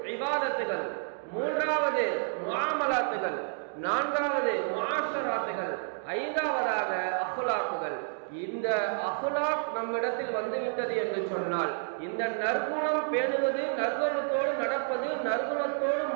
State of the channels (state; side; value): silent; left; 58 dB below the other